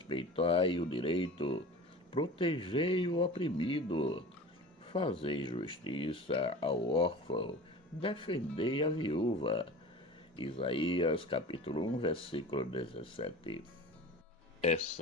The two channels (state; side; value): normal; both; correlation 0.37